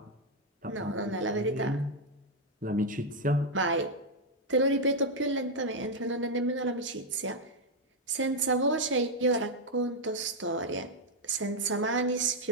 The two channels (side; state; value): both; normal; correlation 0.00